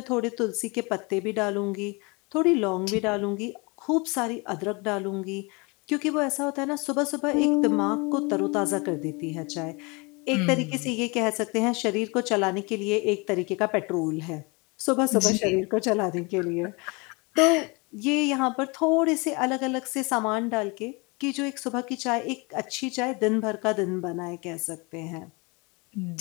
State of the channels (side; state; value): right; quieter; 28.5 dB